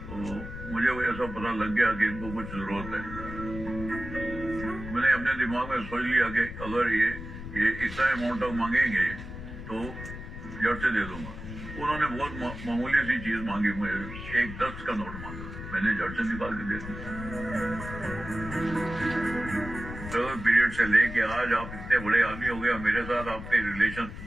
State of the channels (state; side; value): noise; left; rumble, 10 dB below the sound